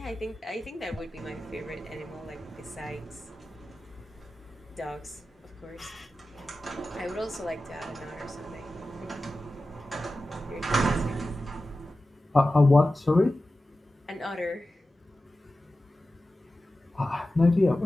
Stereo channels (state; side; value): normal; both; correlation 0.94